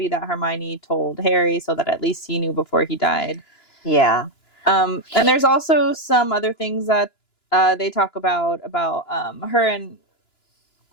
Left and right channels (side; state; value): right; late; 2.9 ms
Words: that Hermione told Harry so that at least he knew before he died. Yeah. And there's also some other things that they talk about her and